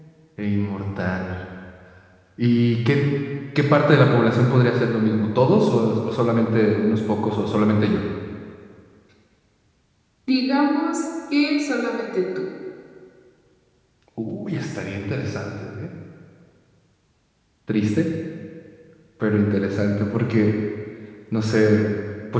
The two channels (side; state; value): both; identical; correlation 1.00